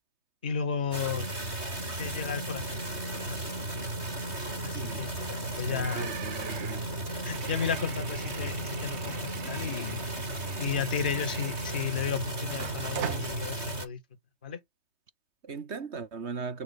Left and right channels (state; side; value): late; left; 3.2 ms